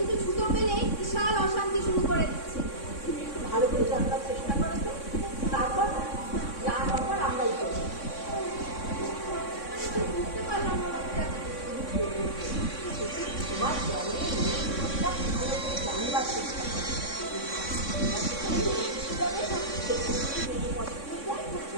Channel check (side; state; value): right; late; 3.6 ms